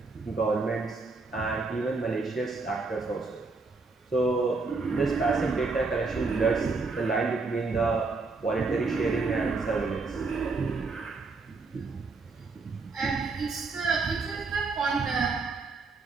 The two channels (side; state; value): left; quieter; 4.0 dB